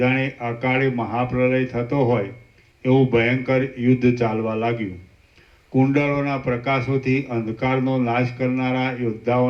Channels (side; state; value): both; identical; correlation 1.00